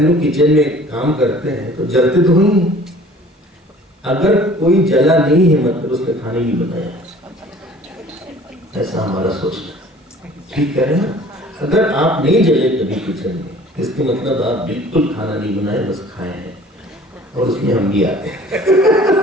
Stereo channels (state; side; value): normal; both; correlation 0.50